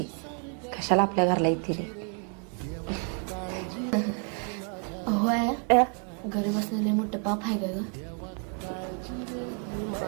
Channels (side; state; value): left; quieter; 38.7 dB